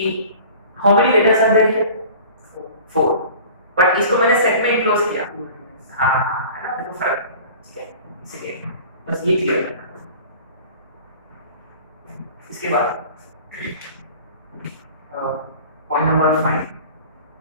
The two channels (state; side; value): inverted; both; correlation -0.43